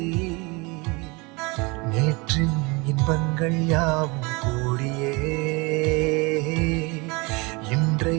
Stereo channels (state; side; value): quieter; left; 27.0 dB